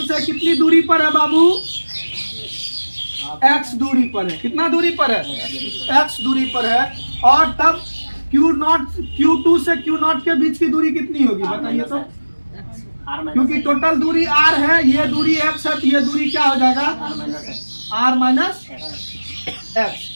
से कितनी दूरी पर है बाबू? x दूरी पर है। कितना दूरी पर है? x दूरी पर है। और तब Q2 से Q0 के बीच की दूरी कितनी होगी बताइए तो? क्योंकि टोटल दूरी r है, ये दूरी x है, तो ये दूरी क्या हो जाएगा? r minus x।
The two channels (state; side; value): inverted; both; correlation -1.00